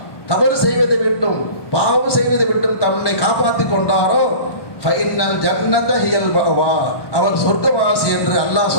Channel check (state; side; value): late; right; 1.1 ms